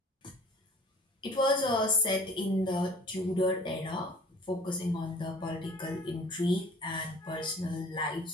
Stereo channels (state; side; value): normal; both; correlation 0.44